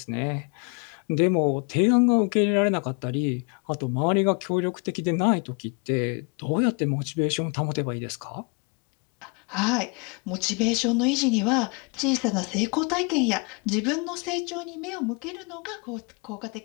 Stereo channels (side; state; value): right; quieter; 32.6 dB